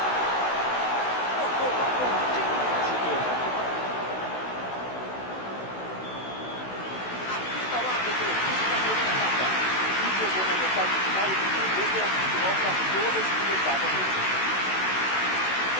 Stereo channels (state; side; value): late; right; 16 ms